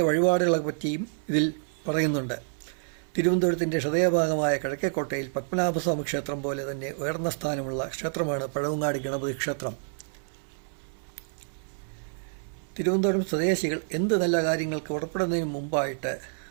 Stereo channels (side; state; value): left; silent; 59 dB below the other